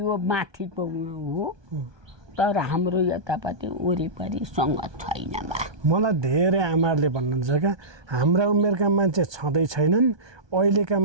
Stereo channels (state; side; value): late; left; 1.2 ms